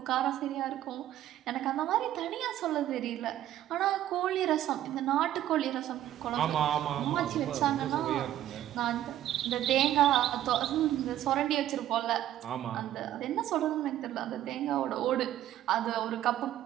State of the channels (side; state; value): left; quieter; 12.6 dB